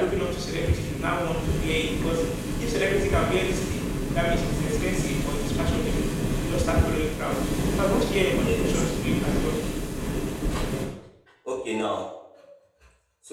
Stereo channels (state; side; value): identical; both; correlation 1.00